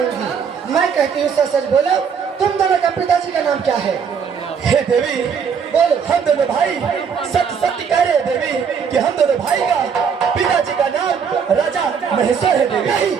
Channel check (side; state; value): left; quieter; 6.7 dB